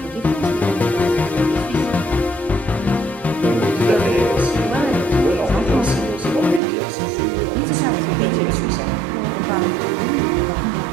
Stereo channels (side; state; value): left; drops out; at 6.6 s